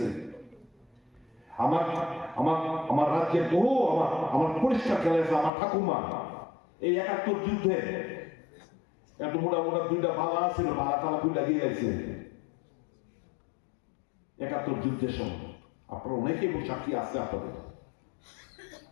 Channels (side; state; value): right; drops out; at 5.5 s